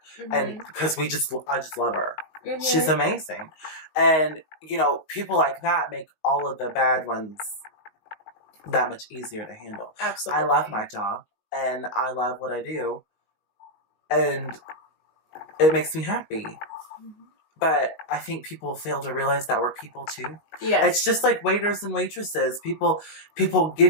Mm-hmm. And because I just love her. Mm-hmm. She's amazing. And, people like that make all of the bad ones that much easier to handle. Absolutely. I love my job, and I love what I do, and it makes me happy. Mm-hmm. But I think people fail to realize that we're people too. Yes. It's just like waiters and waitresses. People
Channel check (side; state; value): right; late; 19 ms